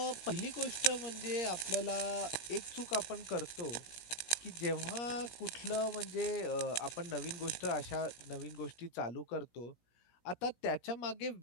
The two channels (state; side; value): late; right; 17 ms